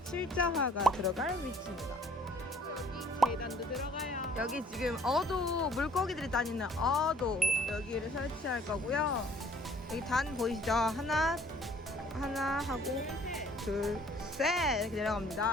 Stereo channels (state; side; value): normal; both; correlation 0.57